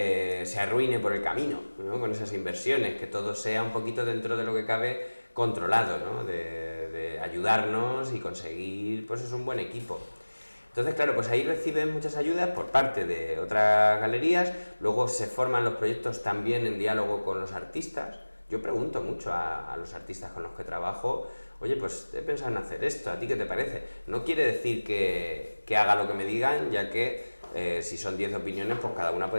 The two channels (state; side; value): inverted; both; correlation -1.00